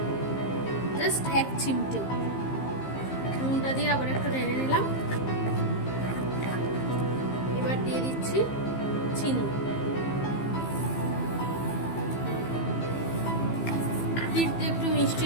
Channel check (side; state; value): right; late; 15 ms